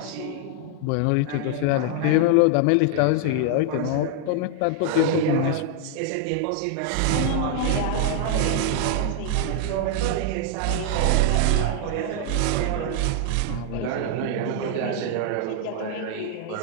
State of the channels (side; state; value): both; different; correlation 0.00